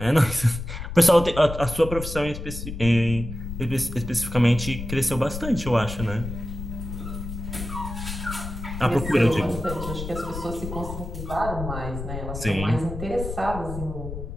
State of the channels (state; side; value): noise; left; rumble, 8 dB below the sound